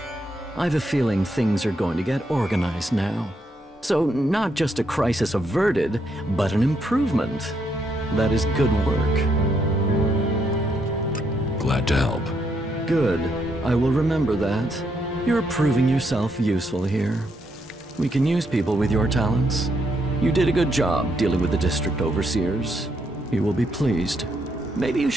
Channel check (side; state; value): both; normal; correlation 0.76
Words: I've a feeling things are going to get organized now. So, not just a crisis averted, but an improvement. That is good work. Glad to help. Good. I will remember that. You're proving yourself useful here. We can use people with your talents. You did a good job dealing with the district overseers. You will be pleased. Maybe you